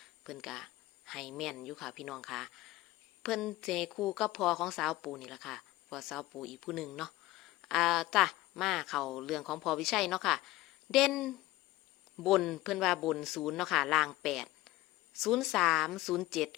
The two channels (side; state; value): right; quieter; 17.8 dB